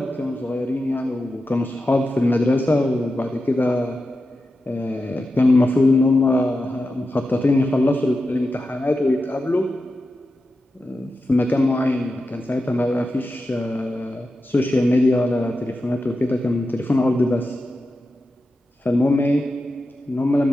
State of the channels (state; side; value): normal; both; correlation 0.91